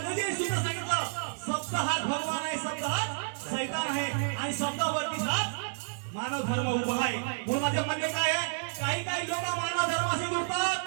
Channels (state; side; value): silent; left; digital silence